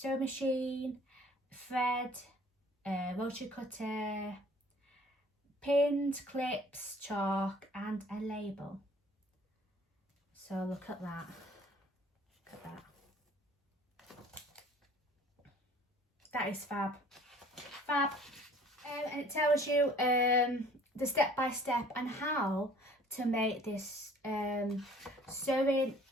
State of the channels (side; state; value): both; normal; correlation 0.52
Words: machine, thread, rotary cutter, pins, clips, chalk, and a label. So look at that. Look at that. That is fab. Fab. And it tells you the step-by-step and how to make this sewing